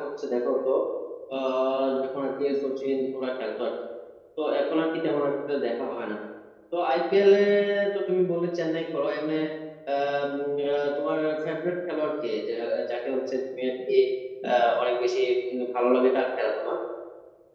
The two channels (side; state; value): both; identical; correlation 1.00